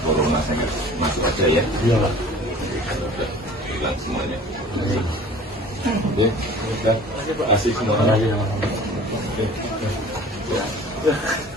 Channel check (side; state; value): both; normal; correlation 0.45